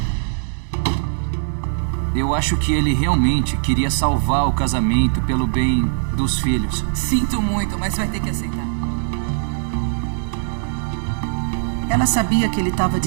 Eu acho que ele realmente queria salvar o casamento pelo bem dos filhos. Sinto muito, mas vai ter que aceitar. Ela sabia que ele estava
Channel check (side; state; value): left; silent; 65 dB below the other